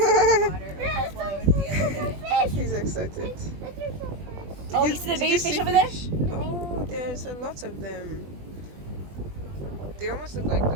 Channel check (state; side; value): late; left; 20 ms